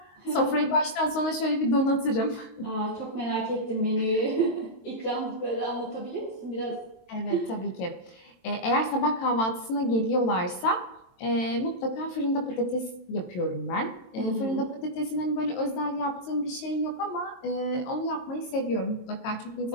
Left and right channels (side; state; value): right; late; 22 ms